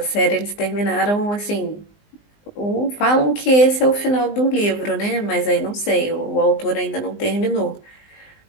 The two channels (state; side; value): late; right; 19 ms